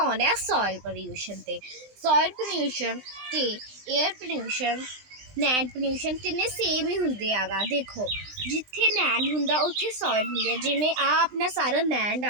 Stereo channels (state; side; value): late; left; 20 ms